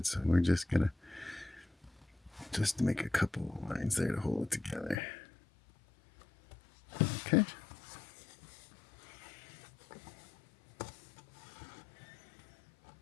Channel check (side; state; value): right; drops out; at 5.0 s